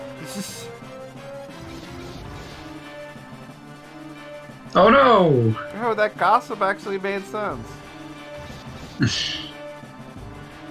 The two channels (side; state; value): both; identical; correlation 1.00